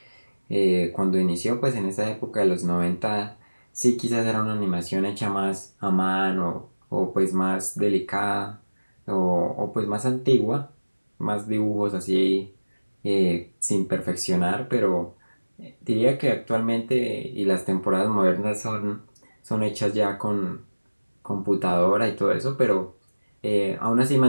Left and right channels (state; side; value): inverted; both; correlation -1.00